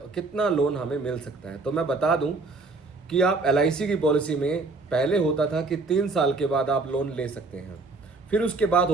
कितना लोन हमें मिल सकता है। तो मैं बता दूं कि आप LIC की पॉलिसी में पहले होता था कि 3 साल के बाद आप लोन ले सकते हैं, फिर उसके बाद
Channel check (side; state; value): left; quieter; 3.6 dB